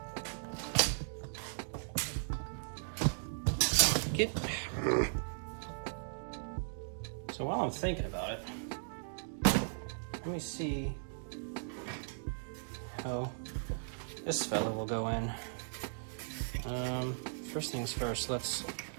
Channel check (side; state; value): left; silent; digital silence